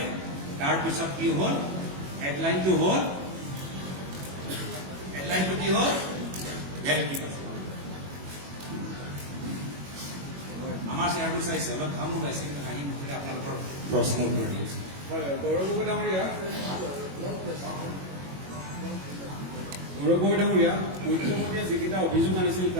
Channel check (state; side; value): late; left; 21 ms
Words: তাৰপিছত কি হ'ল, হেডলাইনটো হ'ল হেডলাইনটো কি হ'ল ভেলকি পাছ আমাৰ চেয়াৰটো চাইছে অলপ ঘাম ওলাইছে কিন্তু হাঁহি মুখেৰে আপোনালোকৰ প্ৰশ্ন উত্তৰ দি আছে হয় গৌৰৱ গগৈ ডাঙৰীয়া মুখ্যমন্ত্ৰীয়ে যিকেইটা অভিযোগ আনিছিল